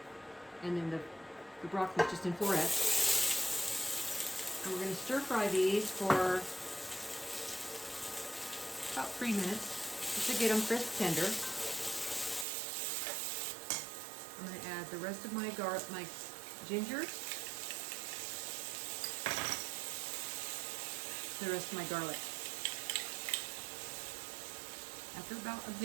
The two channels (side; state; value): left; drops out; at 12.5 s